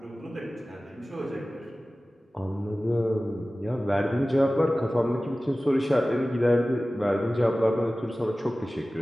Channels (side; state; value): both; normal; correlation 0.97